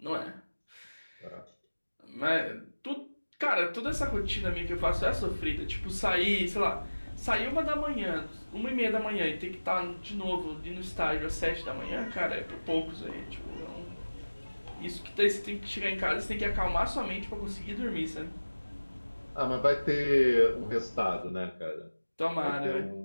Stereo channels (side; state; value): both; inverted; correlation -1.00